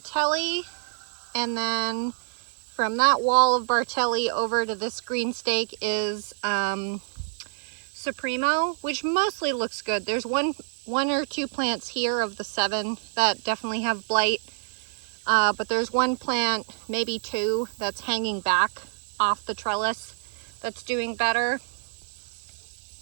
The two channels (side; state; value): left; silent; 60 dB below the other